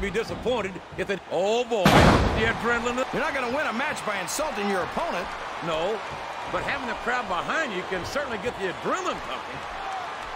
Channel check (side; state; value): both; identical; correlation 1.00